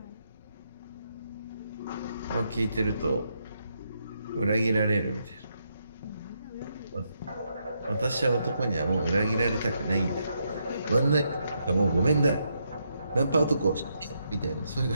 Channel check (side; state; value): both; inverted; correlation -0.79